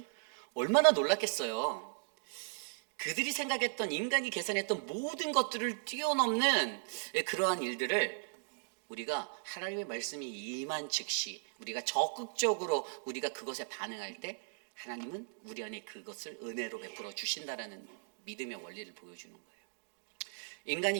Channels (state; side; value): silent; left; digital silence